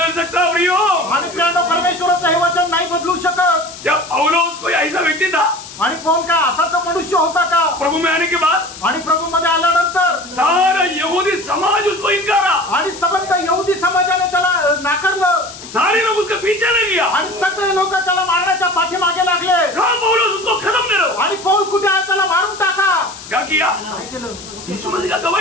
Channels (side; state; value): left; noise; hiss, 15 dB below the sound